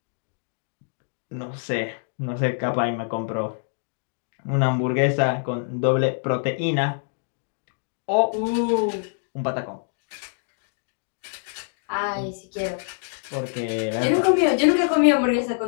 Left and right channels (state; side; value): silent; right; digital silence